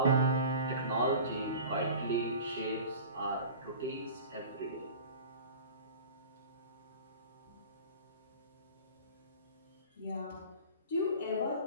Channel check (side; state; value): both; inverted; correlation -0.39